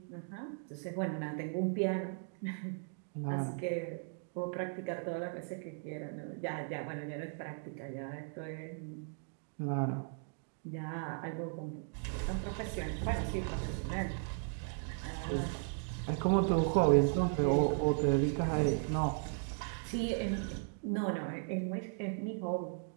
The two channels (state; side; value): silent; left; 53 dB below the other